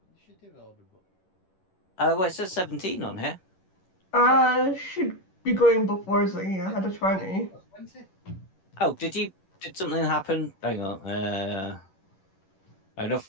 order book. Well, it says 17 on here. Should be going before Zingy. I had a 20. 20? Oh, did something happen? Hang on.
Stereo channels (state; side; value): late; right; 11 ms